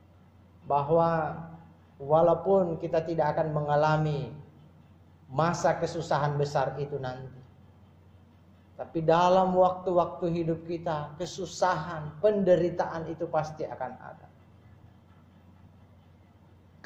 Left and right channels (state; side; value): identical; both; correlation 1.00